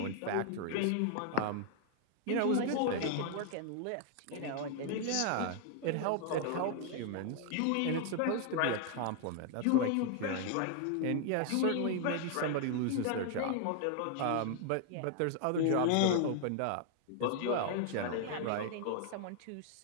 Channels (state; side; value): different; both; correlation 0.00